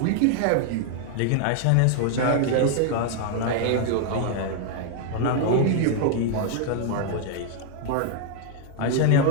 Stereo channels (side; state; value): both; different; correlation 0.00